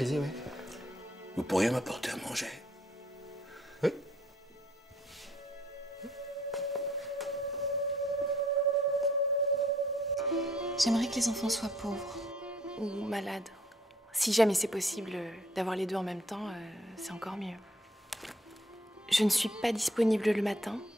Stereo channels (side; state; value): both; normal; correlation 0.64